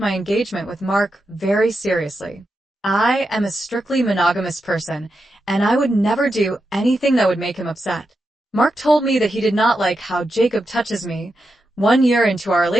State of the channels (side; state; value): both; normal; correlation 0.87